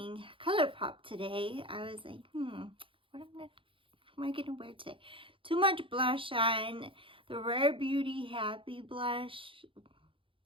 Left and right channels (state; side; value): late; left; 0.25 ms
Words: Colourpop today. I was like, what am I gonna wear today? Too much blush on. The Rare Beauty Happy blush